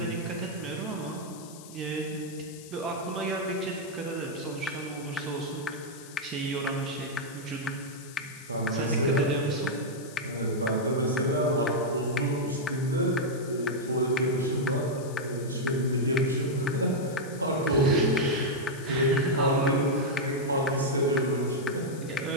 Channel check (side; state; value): left; noise; hiss, 18 dB below the sound